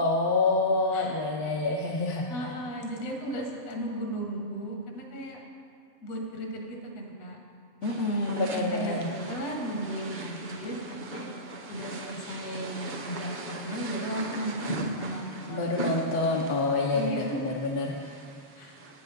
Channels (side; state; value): right; late; 7.0 ms